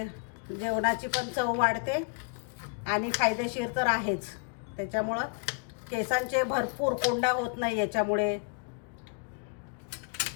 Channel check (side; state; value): right; quieter; 38.0 dB